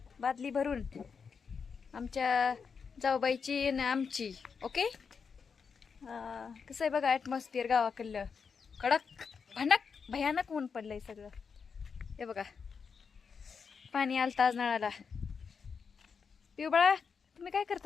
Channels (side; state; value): right; quieter; 5.9 dB